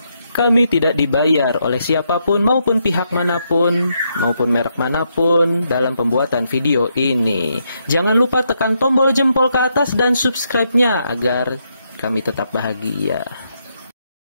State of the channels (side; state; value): both; inverted; correlation -0.79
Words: Kami tidak dibayar oleh siapapun maupun pihak manapun, maupun merek manapun dalam pembuatan video ini. Jangan lupa tekan tombol jempol ke atas dan subscribe-nya agar kami tetap bahagia.